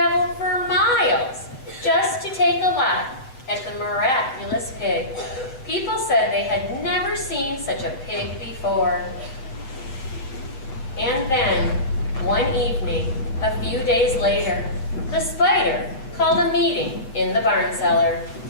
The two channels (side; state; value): right; late; 7.7 ms